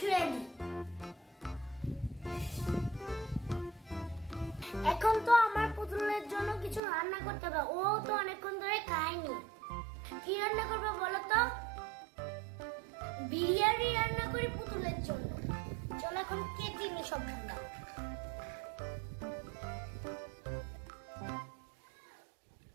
দিই। এখন তো আমার পুতুলের জন্য কিছু রান্না করতে হবে। ও তো অনেকক্ষণ ধরে খায়নি। কি রান্না করবো বলো তো? বিরিয়ানি রান্না করি পুতুলের জন্য। চলো এখন কেটে নি সবগুলো।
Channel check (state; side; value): drops out; left; at 6.8 s